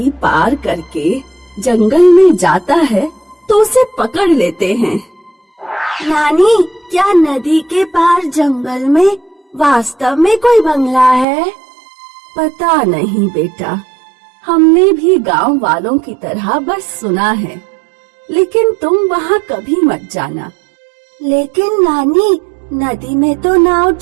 पार करके जंगल में जाता है तो उसे पकड़ लेते हैं। नानी, क्या नदी के पार जंगल में वास्तव में कोई बंगला है? पता नहीं बेटा, हमने भी गांव वालों की तरह बस सुना है, लेकिन तुम वहाँ कभी मत जाना। लेकिन नानी, नदी में तो नाव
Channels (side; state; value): left; drops out; at 11.2 s